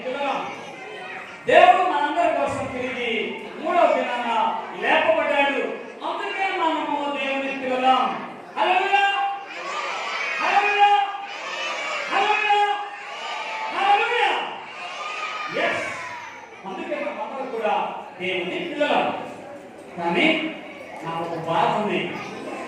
పిల్లలం. దేవుడు మనందరి కోసం తిరిగి 3వ దినాన లేపబడ్డాడు. అందుకే మనము దేవుని పిల్లలం. హల్లెలూయా, హల్లెలూయా, హల్లెలూయా, హల్లెలూయా. yes, అందుకే మనమందరం కూడా దేవుని పిల్లలం. కానీ నాకు ఒక బాధ ఉంది.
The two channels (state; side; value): identical; both; correlation 1.00